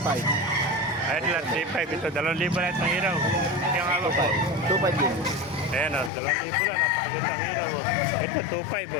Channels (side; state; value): right; drops out; at 6.1 s